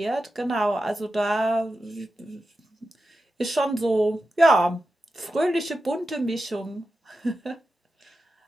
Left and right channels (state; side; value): normal; both; correlation 0.91